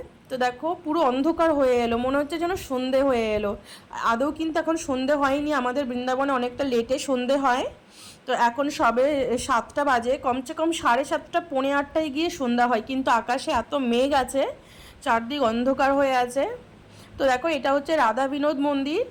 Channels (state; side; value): identical; both; correlation 1.00